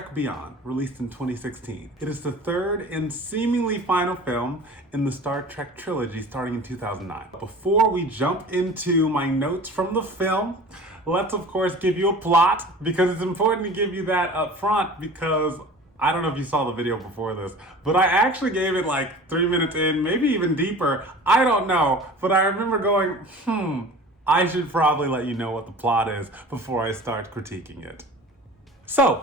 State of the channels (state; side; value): normal; both; correlation 0.41